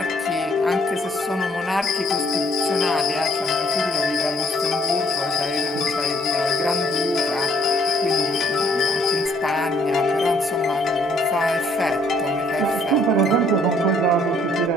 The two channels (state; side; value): normal; both; correlation 0.64